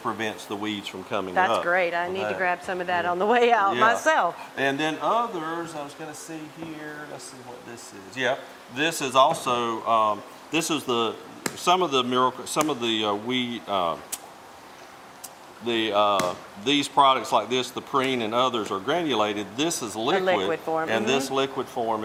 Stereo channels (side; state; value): both; identical; correlation 1.00